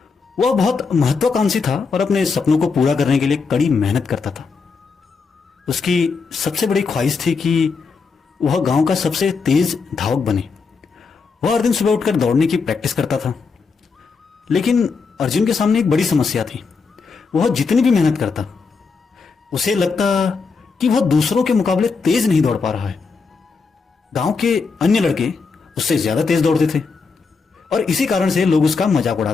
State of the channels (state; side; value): quieter; right; 4.9 dB